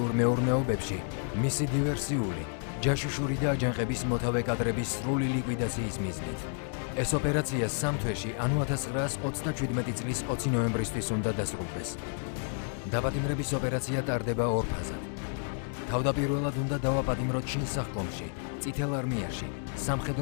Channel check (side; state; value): right; silent; 57 dB below the other